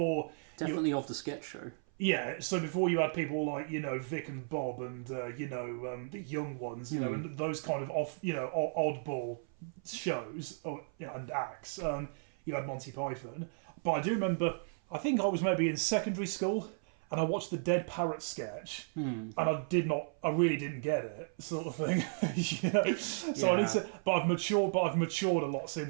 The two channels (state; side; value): silent; left; 55 dB below the other